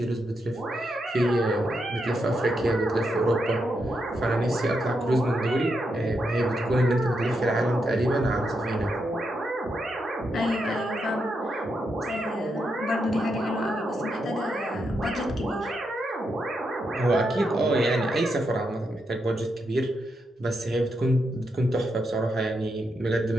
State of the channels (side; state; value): both; normal; correlation 0.83